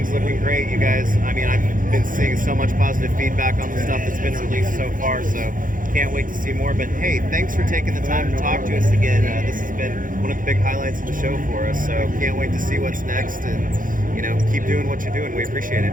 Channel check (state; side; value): late; left; 0.39 ms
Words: looking great, you guys. I mean, I've been seeing so much positive feedback on the stuff that's been released so far, so can't wait to see more. But hey, thanks for taking the time to talk to us again. This has been one of the big highlights of the show for us, so can't wait to see what's next, and keep doing what you're doing. We appreciate it.